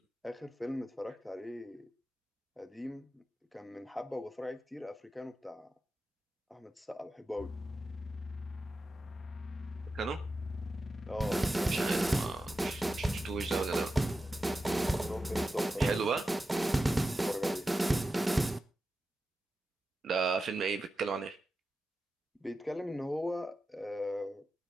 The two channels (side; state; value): both; normal; correlation 0.91